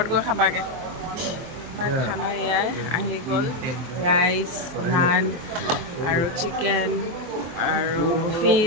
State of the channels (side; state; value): left; late; 23 ms